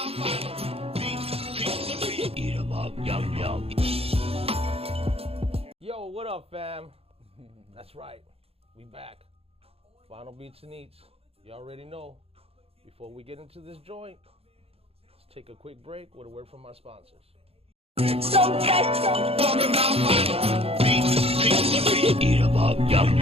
my beats, eat 'em up, yum yum. Yo, what up, fam? That's right, we back. Final Beats and Eats. You already know. Before we get into this joint, let's take a quick break with a word from our sponsors. Talking about my beats, eat 'em up, yum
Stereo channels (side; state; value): left; late; 0.28 ms